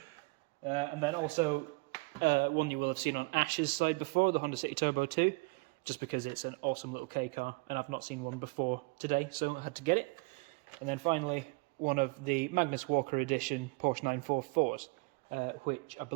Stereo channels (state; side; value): quieter; left; 27.9 dB